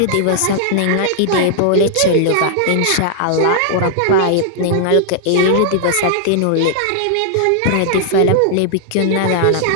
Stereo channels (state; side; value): different; both; correlation -0.01